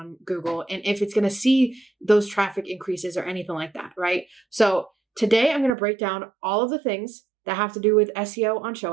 Google and if it's going to see those traffic increases or anything like that, right? So today I'm going to break down all of the things that have to do with SEO on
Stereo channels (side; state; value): left; drops out; at 5.7 s